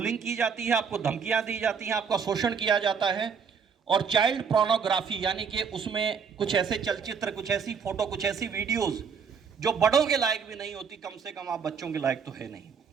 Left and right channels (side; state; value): left; quieter; 6.2 dB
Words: की जाती है, आपको धमकियां दी जाती हैं, आपका शोषण किया जाता है। और चाइल्ड पोर्नोग्राफी, यानी कि उसमें कुछ ऐसे चलचित्र, कुछ ऐसी फोटो, कुछ ऐसी वीडियोस जो बड़ों के लायक भी नहीं होती, कम से कम आप बच्चों के लायक तो है नहीं,